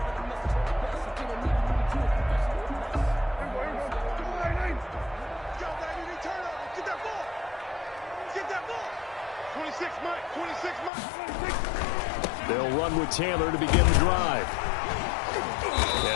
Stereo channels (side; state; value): right; drops out; at 10.9 s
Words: They'll run with Taylor to begin the drive.